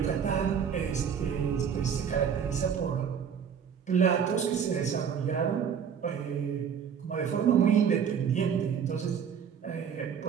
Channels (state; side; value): quieter; left; 7.5 dB